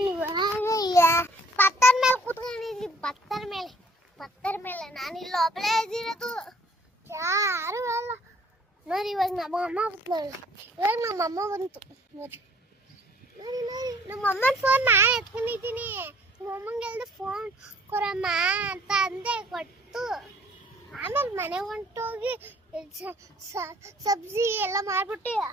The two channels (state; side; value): normal; both; correlation 0.58